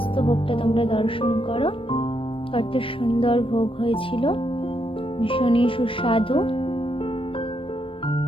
ভোগটা তোমরা দর্শন করো। কত সুন্দর ভোগ হয়েছিল, ভীষণই সুস্বাদু।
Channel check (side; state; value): right; late; 0.26 ms